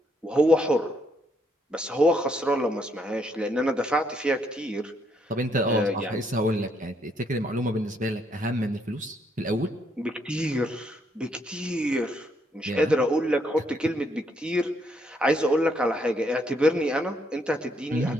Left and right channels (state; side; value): normal; both; correlation 0.73